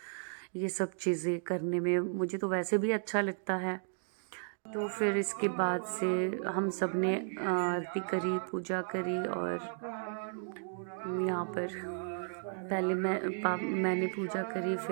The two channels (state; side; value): silent; left; digital silence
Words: ये सब चीज़ें करने में मुझे तो वैसे भी अच्छा लगता है। तो फिर इसके बाद से हम सब ने आरती करी, पूजा करी, और यहाँ पर पहले मैंने पूजा करी,